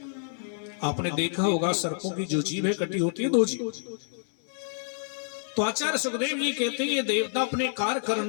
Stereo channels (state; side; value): silent; right; 59 dB below the other